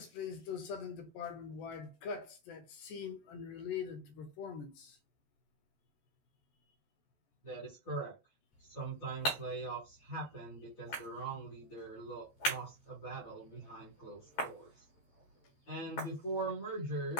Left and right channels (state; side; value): late; right; 13 ms